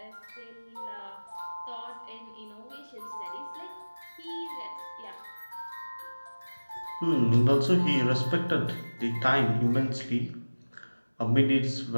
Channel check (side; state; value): both; inverted; correlation -1.00